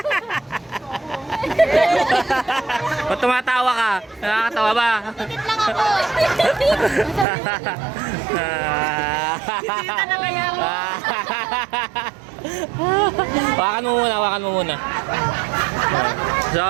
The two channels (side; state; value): left; drops out; at 7.2 s